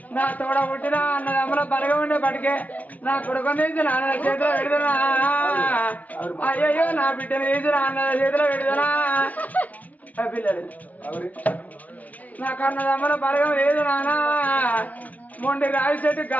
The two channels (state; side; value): late; right; 0.078 ms